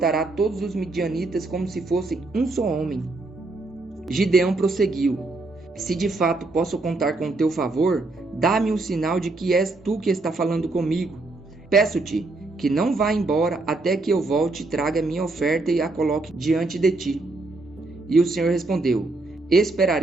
todos os midianitas como se fossem um só homem. Gideão prosseguiu: Se de fato posso contar com teu favor, dá-me um sinal de que és tu que está falando comigo. Peço-te que não vá embora até que eu volte e traga minha oferta e a coloque diante de ti. E o Senhor respondeu:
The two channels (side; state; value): left; quieter; 3.2 dB